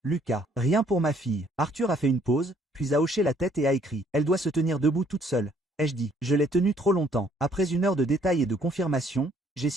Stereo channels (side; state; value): both; normal; correlation 0.63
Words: Lucas. Rien pour ma fille. Arthur a fait une pause, puis a hoché la tête et a écrit. Elle doit se tenir debout toute seule. Ai-je dit. Je l'ai tenue trop longtemps. Après une heure de détails et de confirmation, j'ai